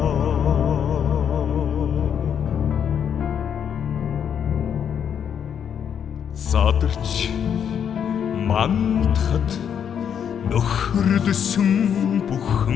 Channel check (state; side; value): quieter; right; 8.2 dB